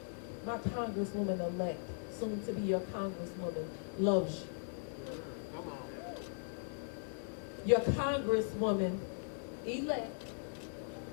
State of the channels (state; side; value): silent; right; 52 dB below the other